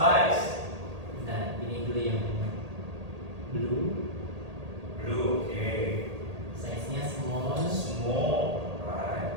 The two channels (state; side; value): late; left; 1.8 ms